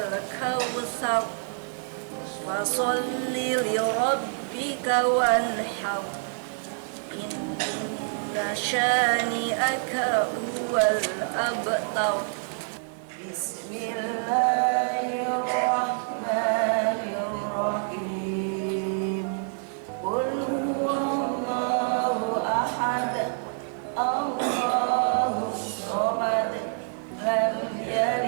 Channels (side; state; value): left; silent; 60 dB below the other